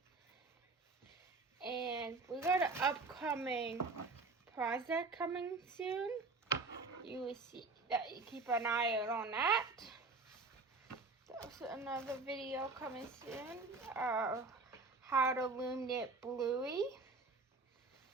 And we got an upcoming project coming soon. You will see that. You keep an eye out on that. There's another video coming soon. How to loom knit Bluey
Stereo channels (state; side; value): quieter; left; 3.8 dB